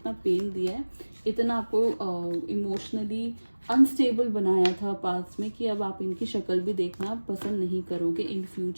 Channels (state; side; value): inverted; both; correlation -1.00